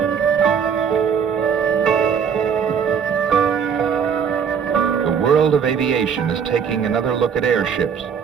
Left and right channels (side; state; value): left; quieter; 7.1 dB